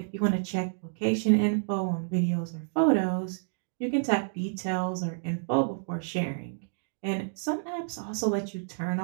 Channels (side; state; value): left; silent; digital silence